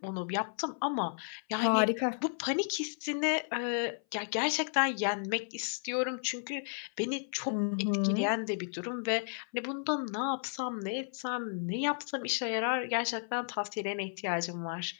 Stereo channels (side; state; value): right; silent; 56 dB below the other